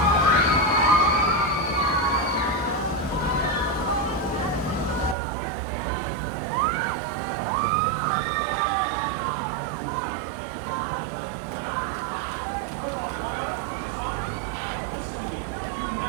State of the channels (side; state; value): left; drops out; at 5.2 s